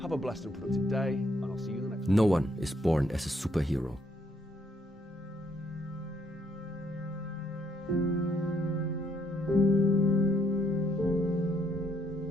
Have a blessed and productive day, and I'll see you in the next one. No one is born as a superhero.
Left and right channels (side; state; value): both; normal; correlation 0.70